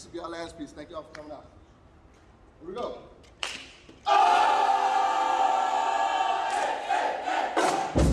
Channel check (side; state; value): both; identical; correlation 1.00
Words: will be our last piece. Thank y'all for coming out. Here we go.